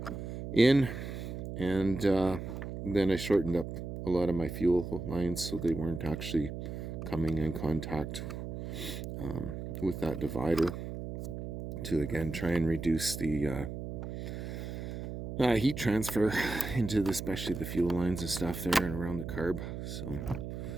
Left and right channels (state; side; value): noise; right; hum, 7 dB below the sound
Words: in, and then I shortened up a lot of my fuel lines so they weren't actually coming in contact with that divider, to again try and reduce the heat transfer into especially the fuel lines and stuff there and around the carb. So